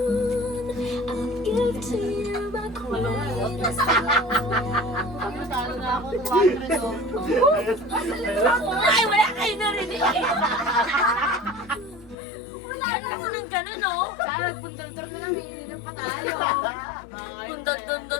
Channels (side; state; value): right; drops out; at 12.2 s